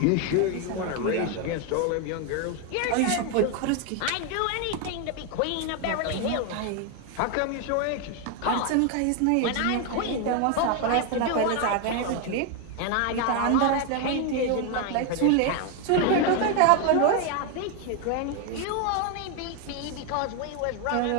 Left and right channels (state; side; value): different; both; correlation 0.01